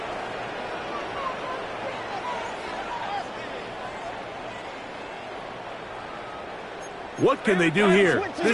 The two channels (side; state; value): both; identical; correlation 1.00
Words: What can they do here?